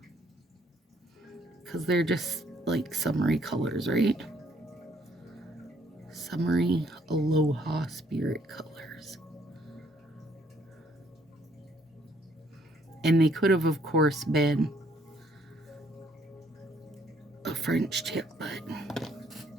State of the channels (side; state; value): both; normal; correlation 0.67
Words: Because they're just like summery colors, right? Summery Aloha Spirit colors. And they could have, of course, been a French tip, but